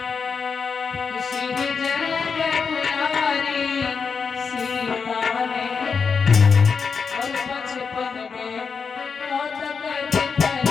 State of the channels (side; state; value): right; quieter; 5.6 dB